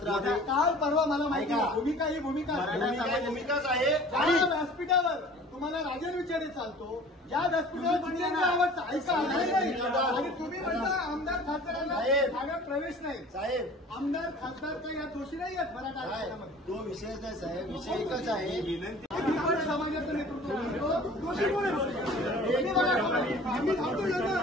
आम्ही काल परवा मला माहिती ऐका. आहे. भूमिका ही भूमिका आहे. भूमिकाच आहे. ज्या व्यासपीठावर तुम्हाला राजन विचारे चालतो, ज्या व्यासपीठावर जितेंद्र आव्हाड ऐका आणि तुम्ही म्हणता आमदार खासदारांना साहेब. ठाण्यात प्रवेश नाही. साहेब, आमदार खासदार काही या दोषी नाही आहेत मराठा आरक्षणामध्ये. तो विषयच नाही साहेब, विषय एकच आहे. मी पण समाजाचं नेतृत्व करतो. दोषी कोण आहे? मी बघा, आम्ही थांबतो ना.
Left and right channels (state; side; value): normal; both; correlation 0.46